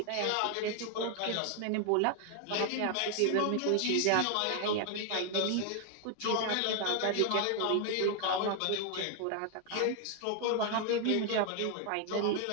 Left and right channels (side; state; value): both; different; correlation 0.00